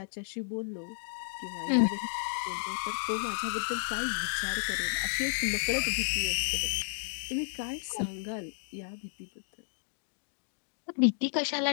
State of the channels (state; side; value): silent; right; digital silence